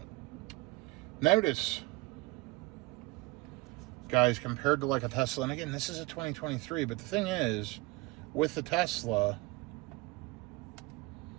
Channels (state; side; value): quieter; left; 23.1 dB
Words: Notice, guys, compared to like a Tesla, and again, this is a 2023, but the thing is, with the Tesla,